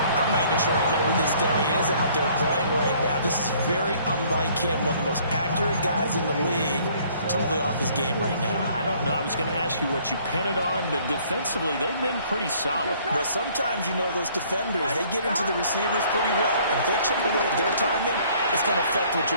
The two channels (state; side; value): inverted; both; correlation -0.59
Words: I'm not even sure I know who this guy is out there playing right now. This is very unlike him, one of the most accurate guys in the league. Totally off his game right now. I don't know. I was going to ask you what you pin it on, but defensively, they've been pretty solid. But sometimes, you know, those defenders, they get into the receivers pretty well, and if they chip away at their timing, it's going to affect what